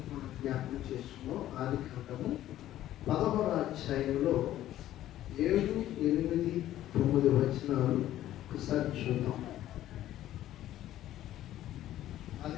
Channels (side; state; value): right; quieter; 13.2 dB